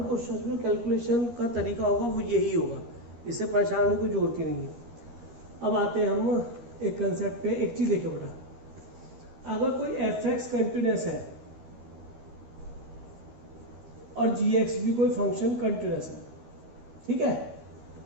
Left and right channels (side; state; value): left; late; 13 ms